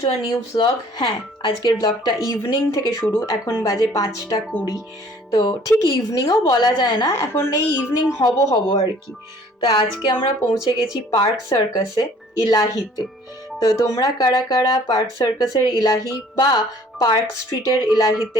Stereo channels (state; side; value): normal; both; correlation 0.54